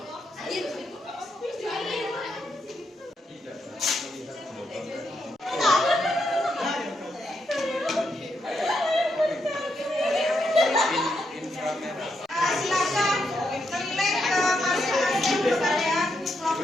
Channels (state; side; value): normal; both; correlation 0.81